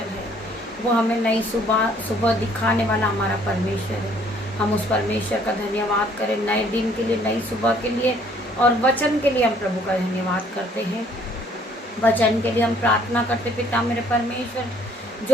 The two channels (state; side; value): normal; both; correlation 0.62